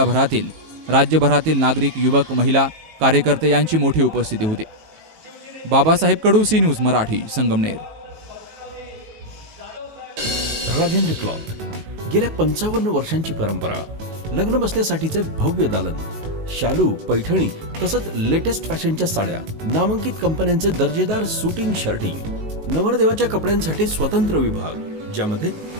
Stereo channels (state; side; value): late; left; 19 ms